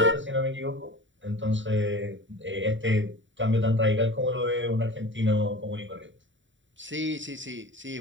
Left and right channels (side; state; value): left; late; 0.55 ms